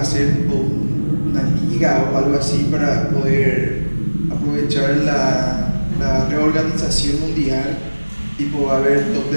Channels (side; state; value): both; inverted; correlation -1.00